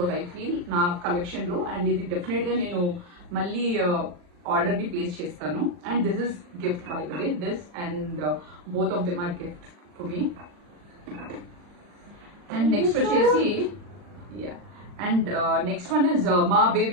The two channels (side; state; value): left; late; 40 ms